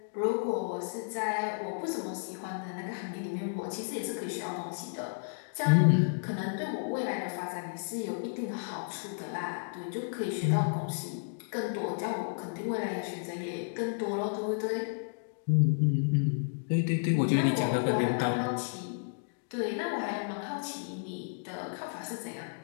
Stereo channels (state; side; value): silent; right; digital silence